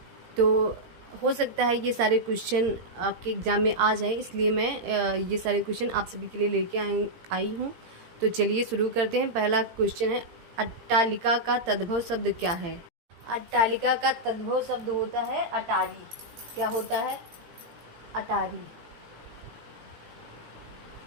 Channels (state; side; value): late; left; 17 ms